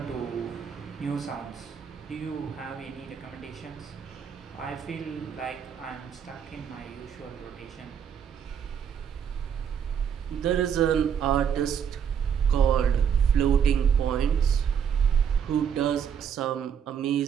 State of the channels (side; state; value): left; quieter; 7.8 dB